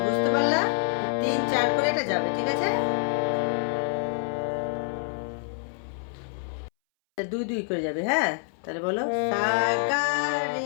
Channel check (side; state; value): right; silent; 60 dB below the other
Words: বুঝতে পারলা? 3-4 করে এটা যাবে। ঠিক আছে, 2-2 করে যাবে। হ্যাঁ, তাহলে বলো সা গা